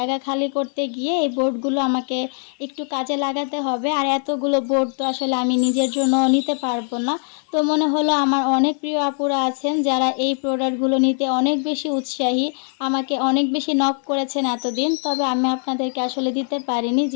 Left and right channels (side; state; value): right; silent; 56 dB below the other